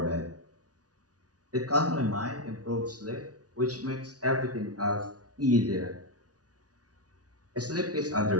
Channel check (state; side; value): late; left; 0.68 ms